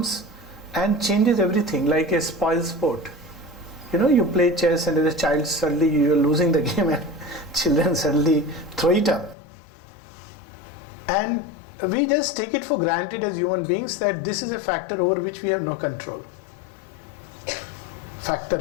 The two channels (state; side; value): drops out; right; at 9.3 s